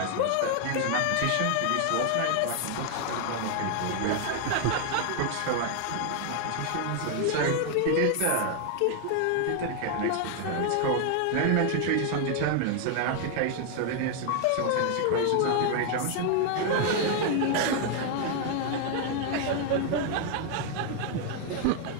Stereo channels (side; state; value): both; different; correlation 0.00